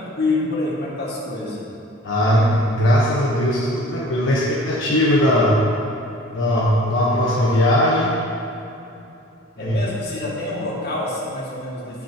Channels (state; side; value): normal; both; correlation 0.47